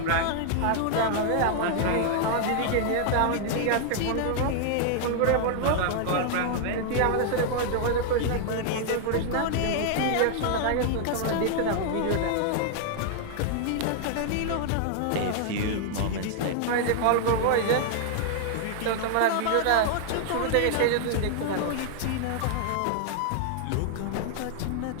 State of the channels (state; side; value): different; both; correlation 0.00